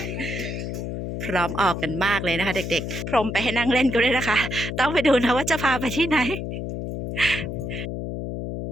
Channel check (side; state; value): left; noise; hum, 5 dB below the sound